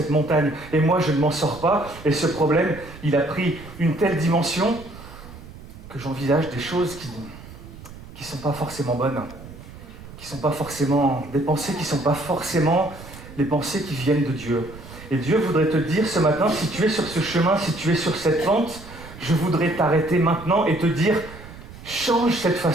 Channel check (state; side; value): noise; right; rumble, 16 dB below the sound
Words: montagne, et moi, je ne m'en sors pas. Et ce problème, il a pris une telle dimension que j'envisage des choses qui ne sont pas forcément bonnes, qui ne sont pas forcément des pensées, qui ne sont pas forcément les pensées qui viennent de Dieu. Et Dieu voudrait te dire ce matin, si tu es sur ce chemin, si tu es sur cette pente, je voudrais t'arrêter maintenant et te dire, change cette